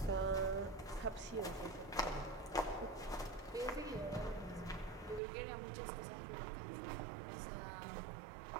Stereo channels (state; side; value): drops out; left; at 5.2 s